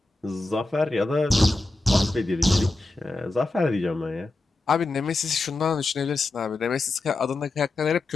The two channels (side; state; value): right; quieter; 3.0 dB